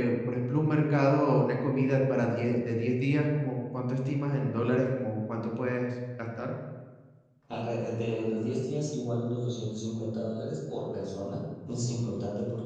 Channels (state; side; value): identical; both; correlation 1.00